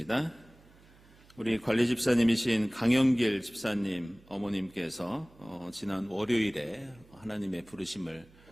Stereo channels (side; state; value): right; noise; hum, 26 dB below the sound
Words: 우리 관리 집사님이신 강영길 집사님 어머님께서 지난 월요일에 하나님의 부르심을